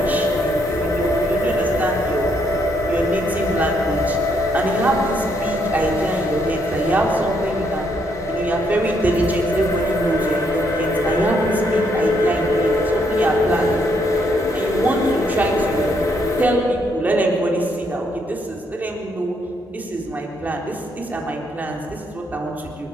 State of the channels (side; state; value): both; normal; correlation 0.73